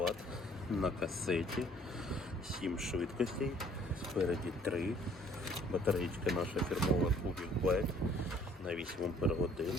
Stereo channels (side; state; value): both; normal; correlation 0.58